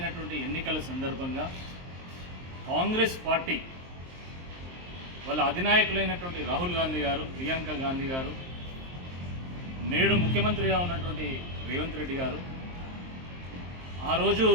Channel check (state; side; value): late; left; 23 ms